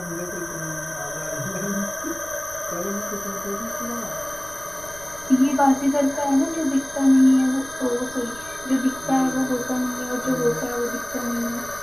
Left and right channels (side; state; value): left; noise; rumble, 21 dB below the sound